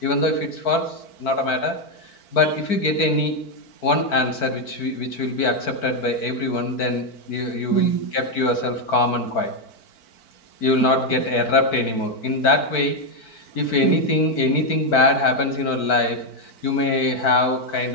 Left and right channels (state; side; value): late; right; 4.5 ms